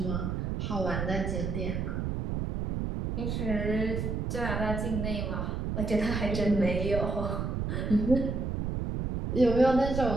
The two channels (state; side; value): noise; right; rumble, 2 dB below the sound